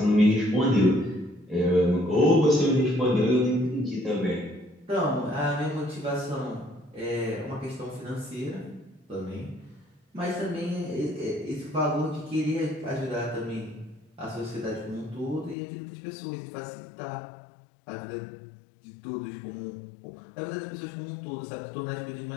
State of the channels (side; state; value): right; drops out; at 15.6 s